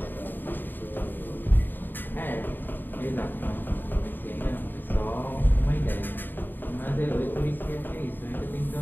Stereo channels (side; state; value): right; late; 0.092 ms